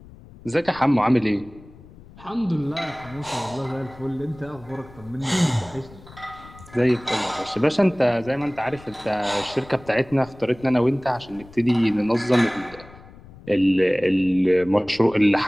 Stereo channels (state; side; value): noise; left; rumble, 21 dB below the sound